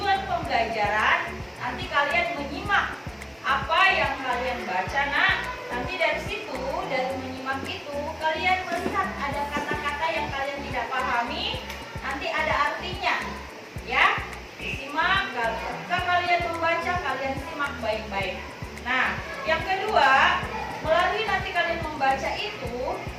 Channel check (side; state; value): both; identical; correlation 1.00